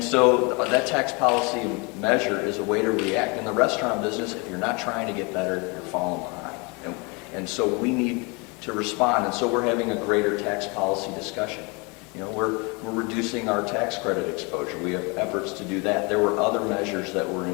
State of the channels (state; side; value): quieter; right; 29.7 dB